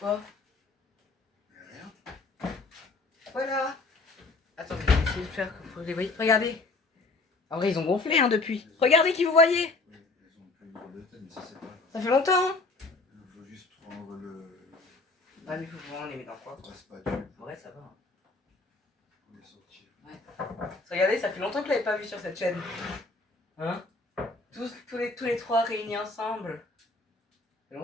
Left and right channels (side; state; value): right; quieter; 3.4 dB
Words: Il n'y a rien. Voilà. Attendez, je vais essayer de faire que vous les voyez. Regardez. En vrai, ils ont gonflé hein, depuis. Regardez qui vous voyez. Oui, ils ont plus une drôle de tête, mais ça c'est pas grave. Ça fait longtemps. Hein. Il faut juste prendre Ah, mais il faut vraiment les mettre dans quoi? la spatule En vrai, ça va. Hein. pour les sortir. Regardez, ça fait longtemps que je l'avais pas vu sur cette chaîne. Hein? Tous les trois réunis ensemble. Ça fait